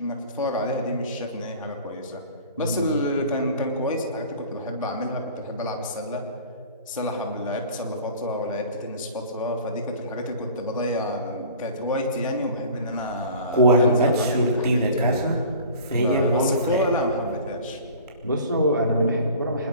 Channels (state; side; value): inverted; both; correlation -0.44